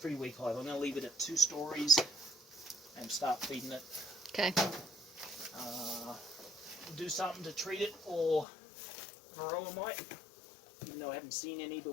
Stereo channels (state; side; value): drops out; right; at 8.5 s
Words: weak hive. I'm going to leave it at 2 stories and start feeding it. Okay. Do something to treat it or varroa mite. Even though I haven't seen any,